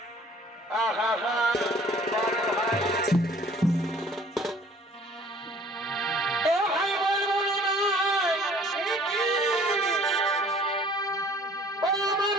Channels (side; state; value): both; normal; correlation 0.53